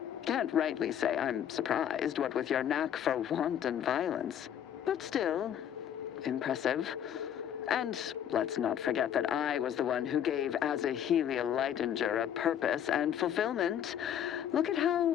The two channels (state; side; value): quieter; right; 9.7 dB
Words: Can't rightly say I'm surprised, what with your knack for wanton violence. But still, impressive. And let's not forget that I was the one who gave Azahelia Leitinger a purpose and fulfillment. Look at